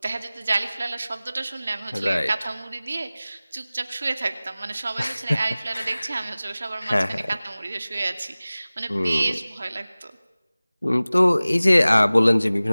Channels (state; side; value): inverted; both; correlation -0.98